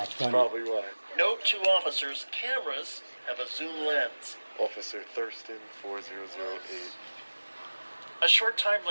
funny. Probably why. Note to officers, cameras have a zoom lens. Officer Thurston 4008. A short time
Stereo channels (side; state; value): both; inverted; correlation -1.00